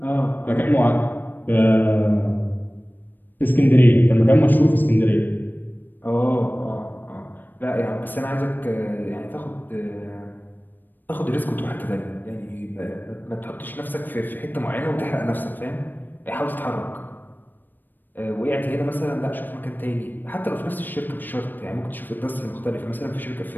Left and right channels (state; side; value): late; right; 0.091 ms